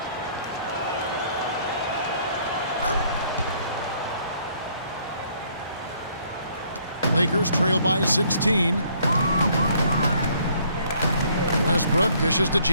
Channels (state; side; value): inverted; both; correlation -0.64